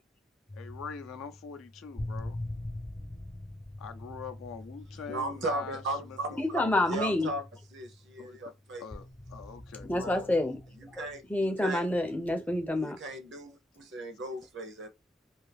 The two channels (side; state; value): both; normal; correlation 0.71